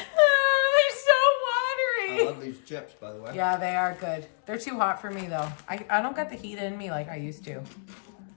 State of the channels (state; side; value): silent; right; digital silence